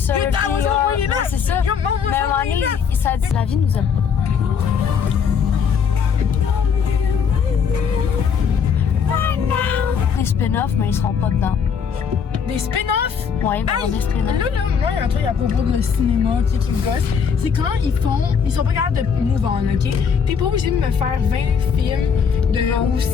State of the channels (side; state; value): right; quieter; 6.7 dB